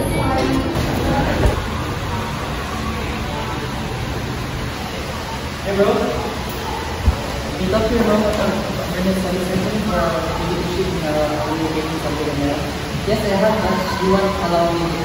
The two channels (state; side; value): identical; both; correlation 1.00